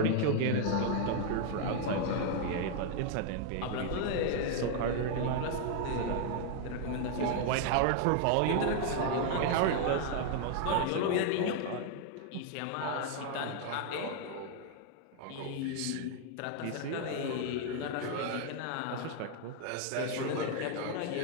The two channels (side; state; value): both; different; correlation 0.00